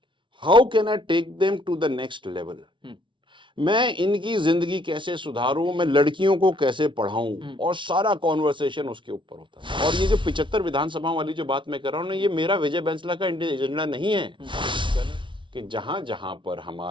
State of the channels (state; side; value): late; left; 0.24 ms